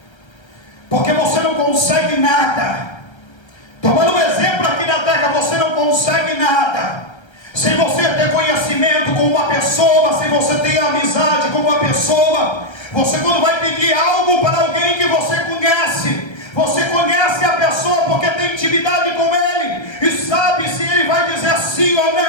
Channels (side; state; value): right; late; 1.3 ms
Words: Porque você não consegue nada. Tomando um exemplo aqui na terra, você não consegue nada sem você ter conhecimento com uma pessoa, sem você ter amizade com uma pessoa. Você, quando vai pedir algo para alguém que você conhece a pessoa porque tem intimidade com ele e sabe se ele vai dizer sim ou